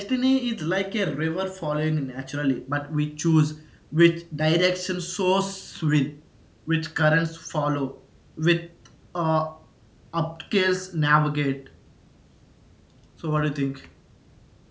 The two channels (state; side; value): identical; both; correlation 1.00